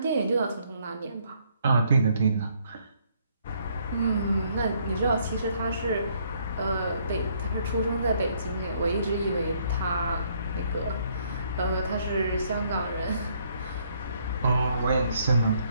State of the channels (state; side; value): inverted; both; correlation -0.68